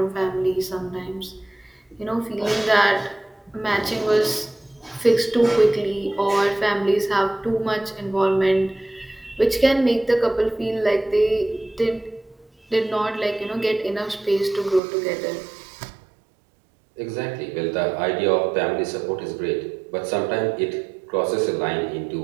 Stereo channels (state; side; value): drops out; left; at 14.8 s